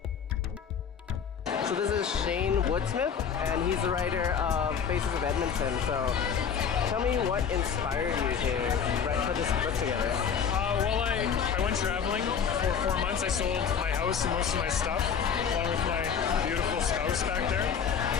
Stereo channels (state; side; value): quieter; right; 7.1 dB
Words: So this is Shane Woodsmith, and he's the writer of Faces of Edmonton. So tell me what inspired you to put this book together? Well, I went traveling for 4 months. I sold my house and most of my stuff, along with my beautiful spouse back there.